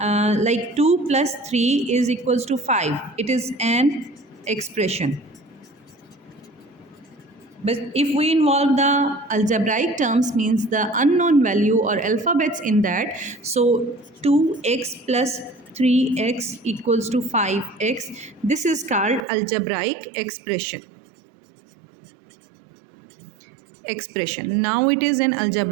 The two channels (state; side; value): drops out; left; at 19.2 s